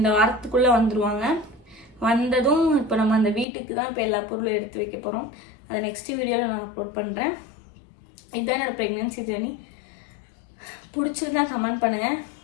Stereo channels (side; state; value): right; drops out; at 3.5 s